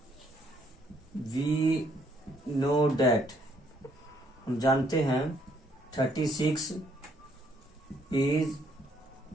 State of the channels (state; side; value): normal; both; correlation 0.67